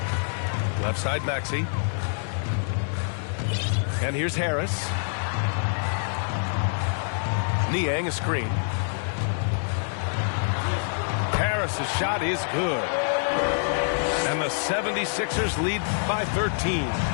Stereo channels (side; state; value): right; silent; digital silence